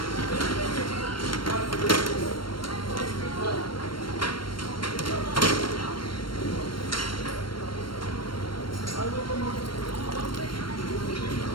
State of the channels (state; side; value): late; right; 0.72 ms